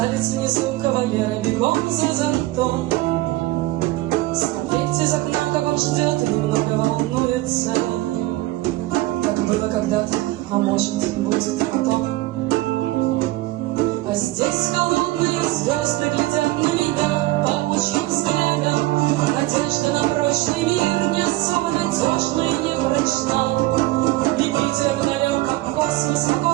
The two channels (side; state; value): left; quieter; 18.4 dB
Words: внизу кавалера бегом за зонтом, смотреть из окна, как он ждет и немного волнуется, как было когда-то, а может, будет потом. А здесь холодные звезды глядят на меня паучьим взглядом. Надежда на прочный мир не особо надежна и не прочна. И Питер далек, как космос, а